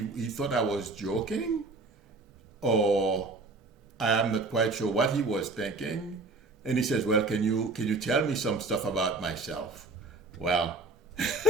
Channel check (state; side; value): quieter; left; 3.2 dB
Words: thought I was joking, or I am not quite sure what he was thinking. And he says, well, can you tell me some stuff about myself? Well,